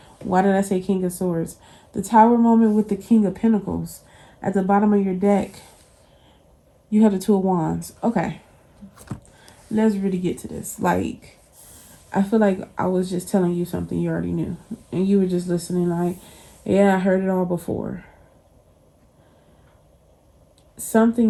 Why did I say King of Swords? The Tower moment with the King of Pentacles. At the bottom of your deck, you have the Two of Wands. Okay. Let's really get to this. Like, I feel like I was just telling you something you already knew. And you were just listening like, yeah, I heard it all before.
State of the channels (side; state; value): both; identical; correlation 1.00